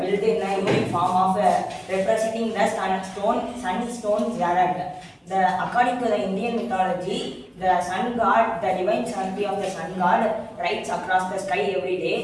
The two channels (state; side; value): identical; both; correlation 1.00